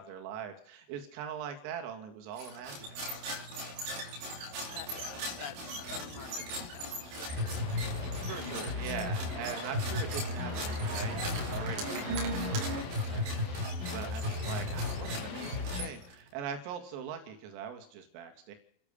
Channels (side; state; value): left; late; 28 ms